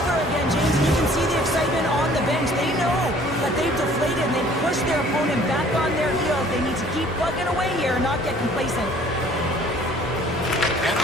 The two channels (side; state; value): both; normal; correlation 0.54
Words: again, James. You can see the excitement on the bench. They know that they've deflated and they've pushed their opponent back on their heels. They need to keep plugging away here and not get complacent. And